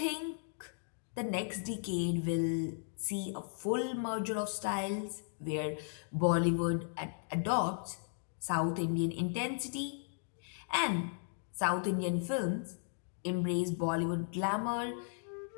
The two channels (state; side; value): silent; right; digital silence